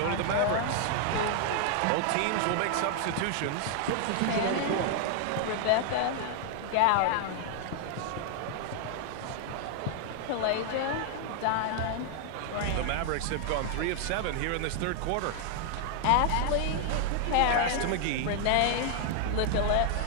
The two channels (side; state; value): both; different; correlation 0.00